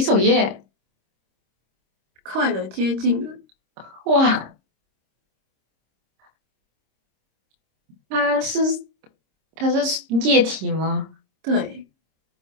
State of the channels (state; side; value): late; left; 26 ms